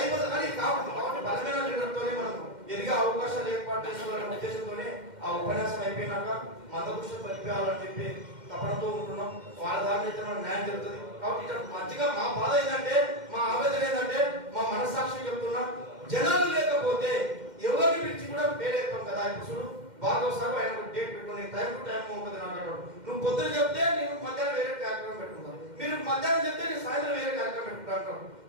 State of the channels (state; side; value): late; left; 2.1 ms